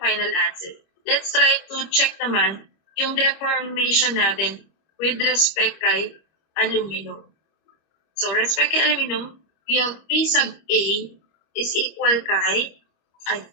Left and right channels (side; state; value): right; late; 25 ms